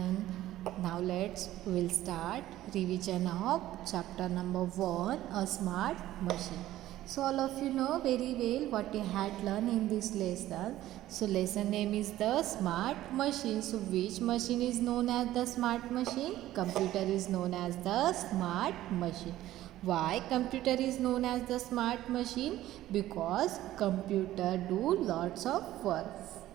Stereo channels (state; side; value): quieter; left; 14.5 dB